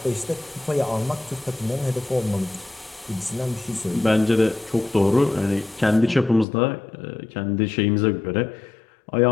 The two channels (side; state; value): right; drops out; at 6.5 s